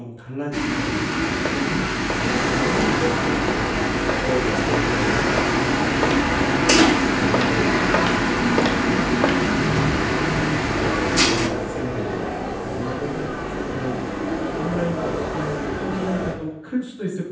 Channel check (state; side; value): identical; both; correlation 1.00